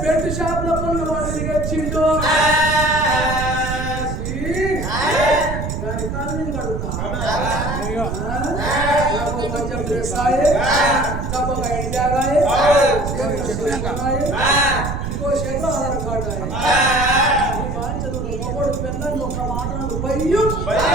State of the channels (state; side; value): noise; right; rumble, 4 dB below the sound